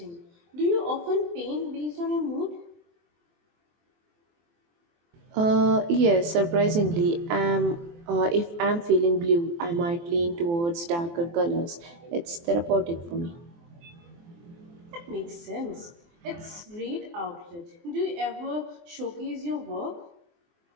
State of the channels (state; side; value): late; left; 23 ms